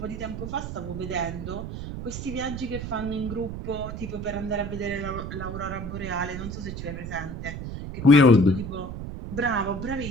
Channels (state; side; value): noise; right; rumble, 7 dB below the sound